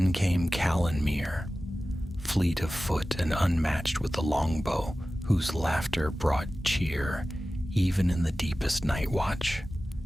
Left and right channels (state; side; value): normal; both; correlation 0.96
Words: came Calanmir, fleet of foot and unmatched with the longbow, whose laughter brought cheer even in the deepest night watch.